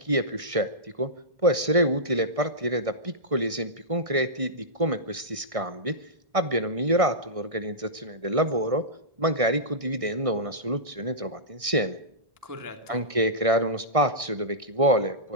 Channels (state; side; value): late; left; 1.6 ms